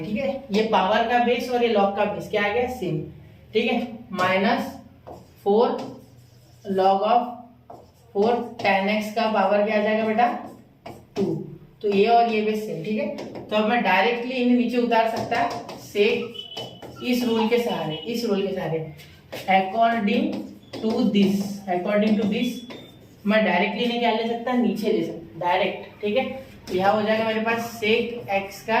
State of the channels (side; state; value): both; identical; correlation 1.00